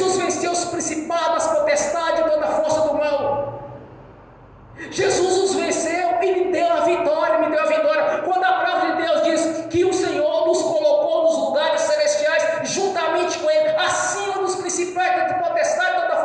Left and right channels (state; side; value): identical; both; correlation 1.00